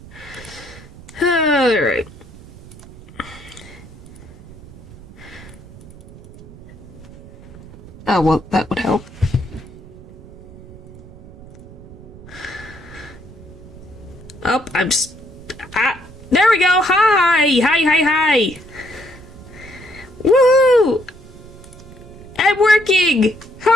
Alright. Oh, well, that would help. Oh, there we go! Hi! Hi! Woo! I'm working!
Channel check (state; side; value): noise; right; rumble, 19 dB below the sound